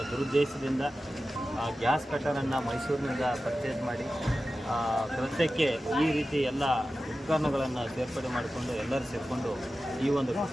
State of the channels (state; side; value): normal; both; correlation 0.94